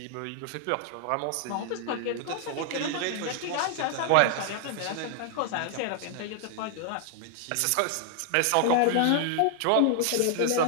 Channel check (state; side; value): different; both; correlation 0.00